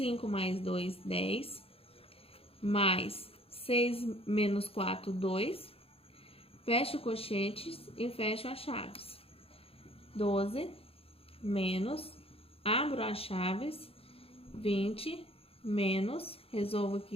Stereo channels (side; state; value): right; late; 0.28 ms